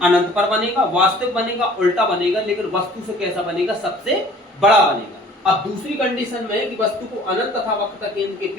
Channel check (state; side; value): normal; both; correlation 0.51